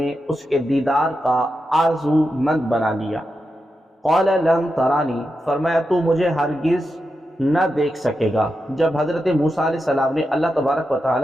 اس کے دیدار کا آرزو مند بنا لیا۔ قال لن ترانی، فرمایا تو مجھے ہرگز نہ دیکھ سکے گا۔ جب حضرت موسیٰ علیہ السلام نے اللہ تبارک و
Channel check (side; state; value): both; normal; correlation 0.88